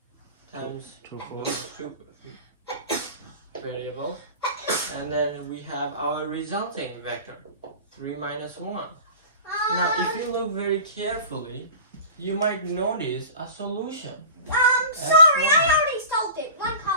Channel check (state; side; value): inverted; both; correlation -0.37